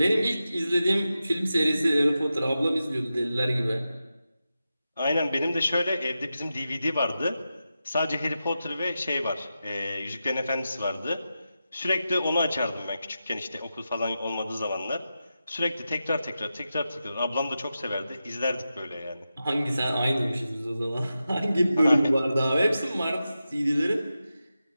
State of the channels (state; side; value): inverted; both; correlation -0.91